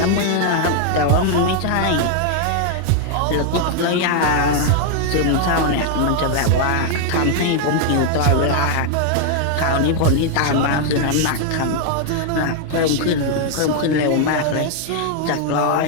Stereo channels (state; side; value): different; both; correlation 0.00